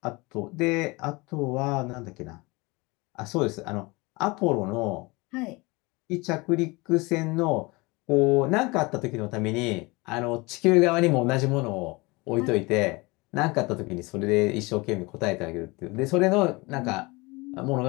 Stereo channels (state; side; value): quieter; right; 24.8 dB